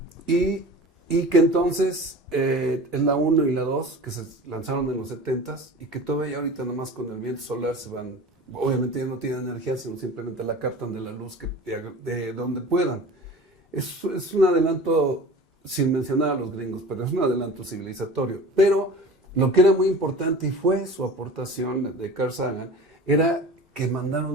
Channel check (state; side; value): normal; both; correlation 0.38